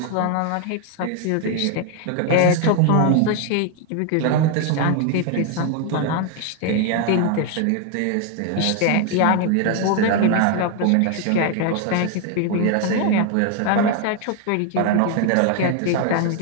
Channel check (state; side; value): different; both; correlation 0.01